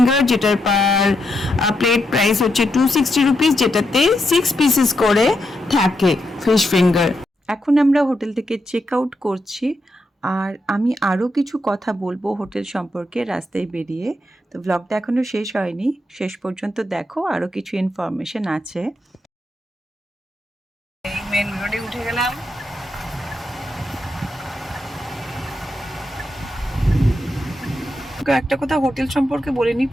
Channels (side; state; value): both; normal; correlation 0.83